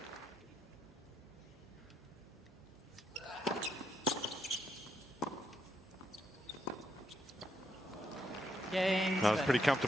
Cain. That was pretty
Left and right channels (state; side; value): normal; both; correlation 0.78